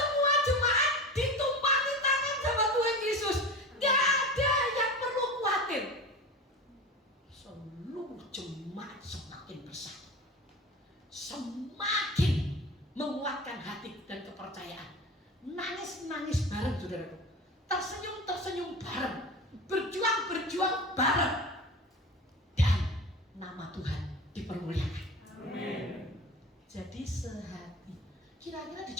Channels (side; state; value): both; normal; correlation 0.31